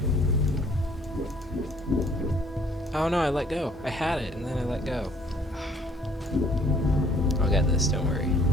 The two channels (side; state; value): both; normal; correlation 0.59